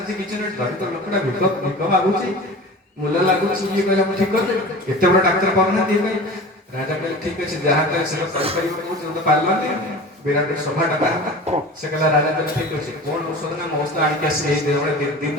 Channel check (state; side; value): normal; both; correlation 0.36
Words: କିଛି ନୁହେଁ ଦରିଦ୍ର ଲୋକଟା ଭିକ ମାଗୁଛି ମୂଲ୍ୟ ଲାଗୁଛି ଇଏ କହିଲା ମୁଁ ଠିକ କରିଦେବି ଏତେ ବଡ ଡାକ୍ତର ପାଉନାହାନ୍ତି ଇଏ ପାଇଁ ରାଜା କହିଲେ ଠିକ ଅଛି ଯାହା କହିଲେ ସେଟା କରିପାରିବ କହୁଛି ତ ପାରିଲନି ବିରାଟ ସଭାଟା ବାହାରିଲା ସେ କହିଲା ରାଜା କହିଲେ ଠିକ ଅଛି କଣ ଔଷଧ ନା ମୋ ଔଷଧ ଆଣିକି ଆସିଲେ ଏଇ ଦିନ ଦିନ